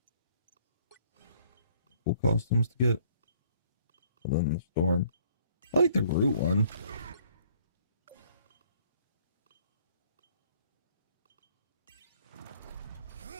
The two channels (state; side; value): inverted; both; correlation -0.61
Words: Cool costumes to get. Other than the storm. I like the Groot one.